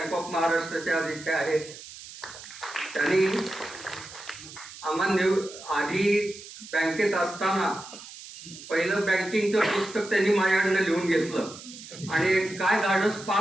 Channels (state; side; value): noise; right; hiss, 15 dB below the sound